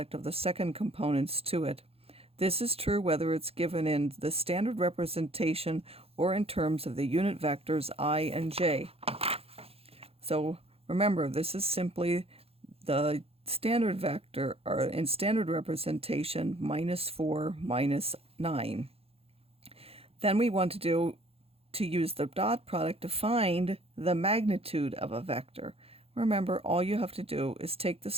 of the second components to it. This is true whether it's given in the standard representation or in terms of the unit vectors I and j. So remember, this is simply the standard vector, or in standard representation, -4, -9. Then we want to use the dot product to find the magnitude of a vector. Remember, all you have to do is take the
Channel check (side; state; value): left; late; 0.28 ms